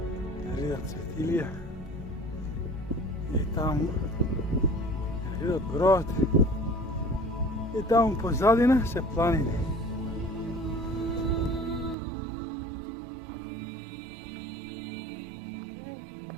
Ridot Cvetilija i tamo Ridot Brod i tamo pozadina se planine.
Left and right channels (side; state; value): left; drops out; at 12.0 s